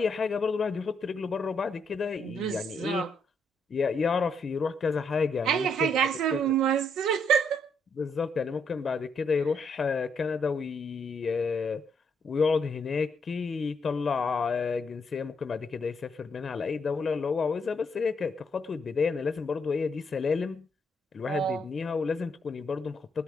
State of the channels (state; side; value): normal; both; correlation 0.75